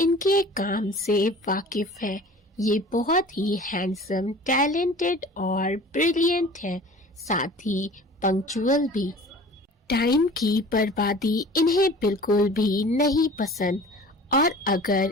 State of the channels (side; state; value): both; normal; correlation 0.43